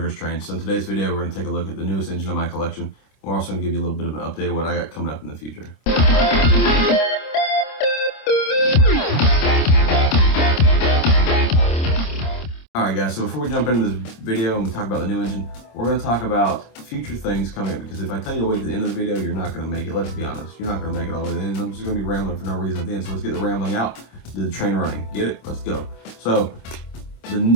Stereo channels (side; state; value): right; late; 26 ms